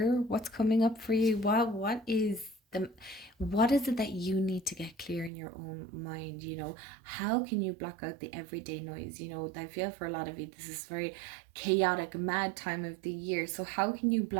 what's coming up for you. What is it that you need to get clear in your own mind? How can you block out the everyday noise? I feel for a lot of you this is very chaotic, mad time of the year. So how can you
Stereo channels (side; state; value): left; drops out; at 5.3 s